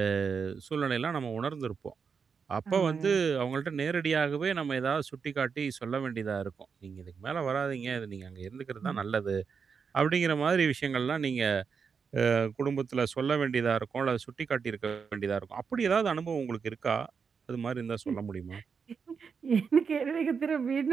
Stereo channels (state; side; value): quieter; left; 6.0 dB